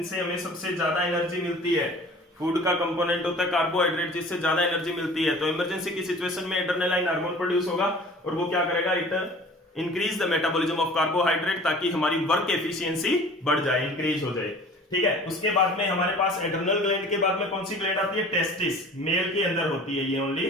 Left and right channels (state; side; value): normal; both; correlation 0.45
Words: हमें सबसे ज्यादा एनर्जी मिलती है, फूड का कंपोनेंट होता है कार्बोहाइड्रेट, जिससे ज्यादा एनर्जी मिलती है। तो इमरजेंसी की सिचुएशन में एड्रेनालाइन हार्मोन प्रोड्यूस होगा और वो क्या करेगा, it increase the metabolism of carbohydrate, ताकि हमारी वर्क एफिशिएंसी बढ़ जाए, इंक्रीज हो जाए, ठीक है। उसके बाद में हमारे पास एड्रेनल ग्लैंड के बाद में कौन सी ग्लैंड आती है, टेस्टिस, मेल के अंदर होती है ये ओनली।